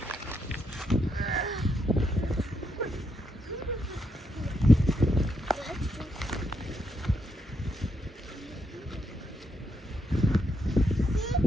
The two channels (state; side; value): normal; both; correlation 0.79